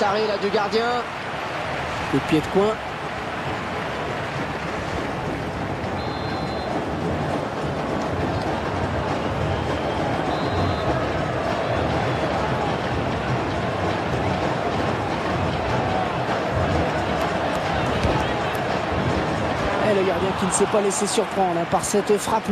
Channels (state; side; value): identical; both; correlation 1.00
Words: arrêt là du gardien. Le pied de coin. Et le gardien qui ne s'est pas laissé surprendre par cette frappe